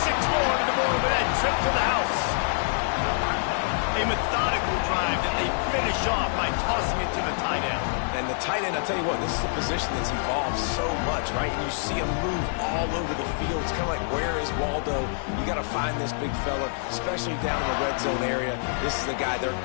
more to the board with that trip to the house. A methodical drive that they finish off by tossing it to the tight end. And the tight end, I'll tell you what, this is a position that's evolved so much, right? And you see him move all over the field. It's kind of like, where is Waldo? You got to find this big fella, especially down in the red zone area. This is the guy they're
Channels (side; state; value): right; silent; 61 dB below the other